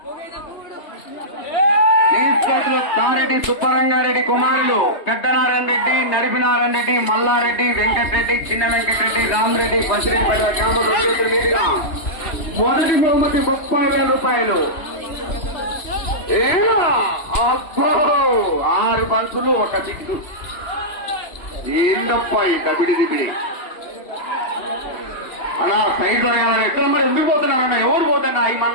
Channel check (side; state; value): right; late; 2.9 ms